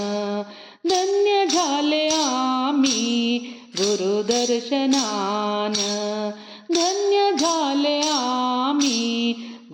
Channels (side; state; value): both; identical; correlation 1.00